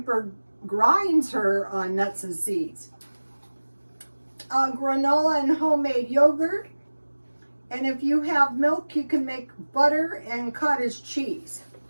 grinds her nuts and seeds. Granola and homemade yogurt. And if you have milk, you can make butter and cottage cheese.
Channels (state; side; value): inverted; both; correlation -1.00